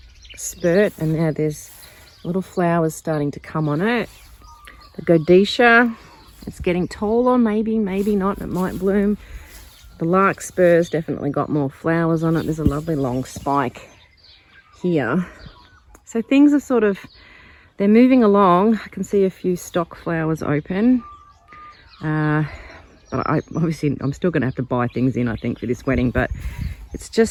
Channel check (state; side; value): identical; both; correlation 1.00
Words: spurt, and now there's little flowers starting to come on it. The Godetia, it's getting taller, maybe not, it might bloom. The larkspur's definitely got more flowers on it. There's a lovely long spike here. So things are they're moving along. I can see a few stock flowers open. But I'm still going to have to buy things in, I think, for this wedding. But it's